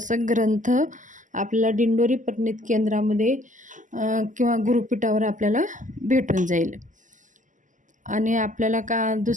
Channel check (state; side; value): late; left; 0.37 ms